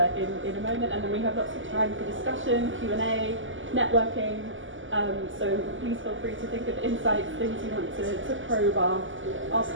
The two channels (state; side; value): late; left; 0.57 ms